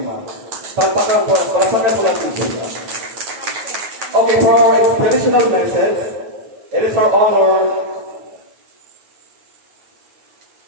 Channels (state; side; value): late; left; 9.4 ms